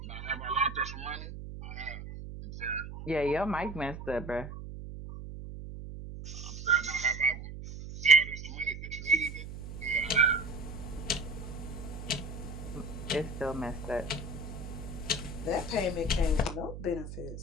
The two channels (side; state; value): right; noise; hum, 10 dB below the sound